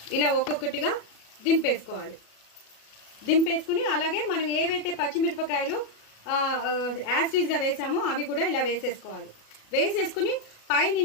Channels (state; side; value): late; right; 37 ms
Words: ఇలా ఒక్కొక్కటిగా దింపేసుకోవాలి. దింపేసుకుని అలాగే మనం ఏవైతే పచ్చిమిరపకాయలు యాస్టీస్గా వేసామో అవి కూడా ఇలా వేసేసుకోవాలి. వేసేసుకుని